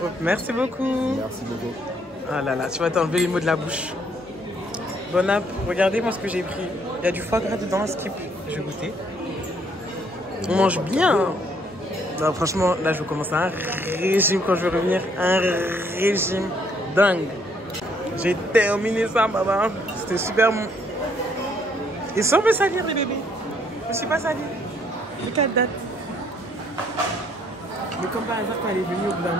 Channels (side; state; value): both; normal; correlation 0.67